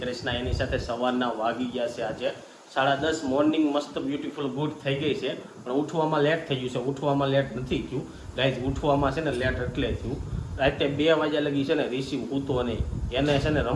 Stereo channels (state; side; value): identical; both; correlation 1.00